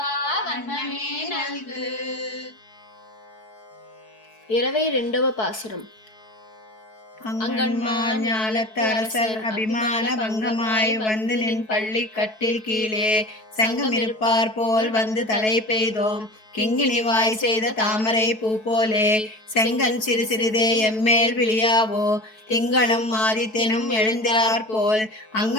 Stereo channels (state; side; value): late; right; 4.6 ms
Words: வண்ணமே நல்கு. 22వ பாசுரம். அங்கன்மான் ஞாலத்து அரசர் அபிமான பங்கமாய் வந்து நின் பள்ளி கட்டில் கீழே சங்கமிருப்பார் போல் வந்து தலை பெய்தோம் கிங்கினிவாய் செய்த தாமரை பூ போலே செங்கன் சிறு சிறிதே எம்மேல் விழியாவோ திங்களும் ஆதித்தனும் எழுந்திரார் போல்